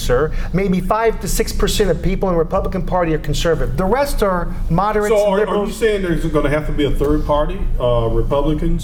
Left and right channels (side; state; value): both; identical; correlation 1.00